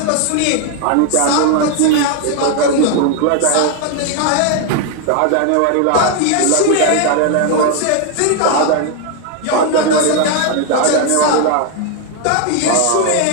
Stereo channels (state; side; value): different; both; correlation 0.01